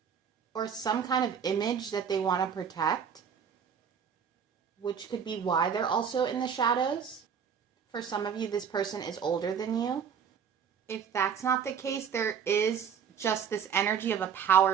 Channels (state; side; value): quieter; left; 7.4 dB